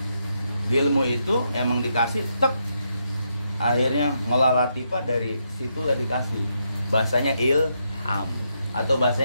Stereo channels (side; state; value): both; inverted; correlation -0.80